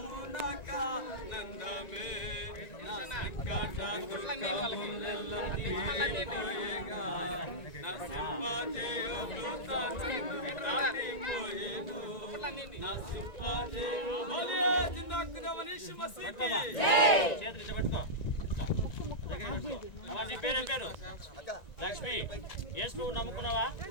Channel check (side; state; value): right; late; 1.9 ms